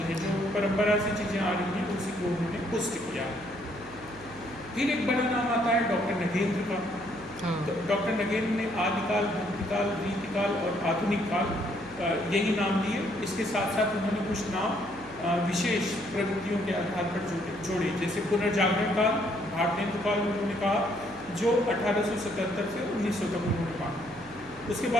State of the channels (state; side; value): noise; right; hum, 21 dB below the sound